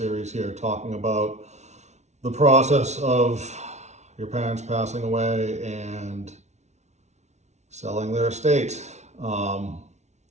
here talking about the process of your parents passing away and selling their estate.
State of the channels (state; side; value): late; left; 0.32 ms